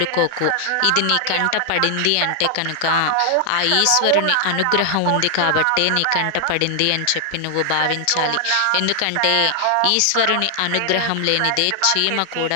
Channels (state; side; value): different; both; correlation 0.00